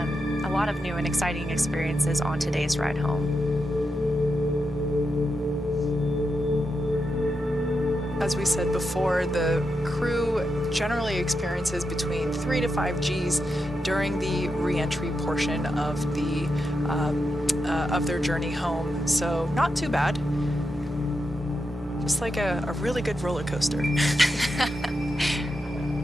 a lot of new and exciting experiences on today's ride home. As we said before, the crew generally experiences between 3 to 5 Gs during the re-entry portion of the of their journey home, so not too bad. Just like a really good roller coaster.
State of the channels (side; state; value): both; normal; correlation 0.86